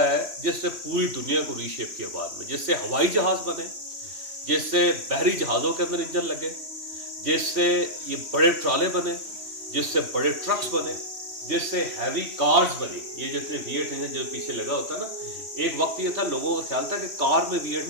جس سے پوری دنیا کو ری شیپ کیا بعد میں, جس سے ہوائی جہاز بنے, جس سے بحری جہازوں کے اندر انجن لگے, جس سے یہ بڑے ٹرالے بنے, جس سے بڑے ٹرکس بنے, جس سے ہیوی کارز بنی. یہ جتنے V8 انجن جو پیچھے لگا ہوتا نا, ایک وقت یہ تھا لوگوں کا خیال تھا کہ کار میں V8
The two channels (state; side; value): late; left; 3.0 ms